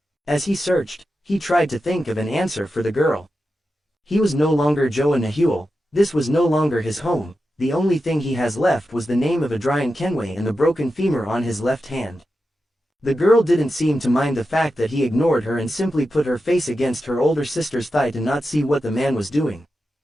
As he searched, he tried to think of an answer for the girl. He was no longer Joa Nahuel. This was no longer his home. The only thing he has left was the name of Adrian Kenway and the broken femur on his left hand. The girl didn't seem to mind the fact that he ignored her and simply put her face against her older sister's thigh to not see what the man was doing.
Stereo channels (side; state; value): both; normal; correlation 0.90